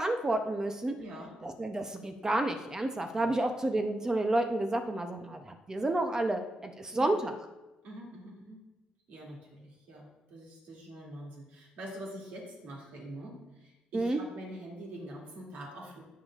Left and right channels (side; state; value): both; normal; correlation 0.88